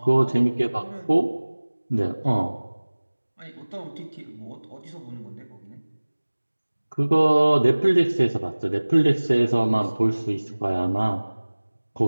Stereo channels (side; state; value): both; inverted; correlation -1.00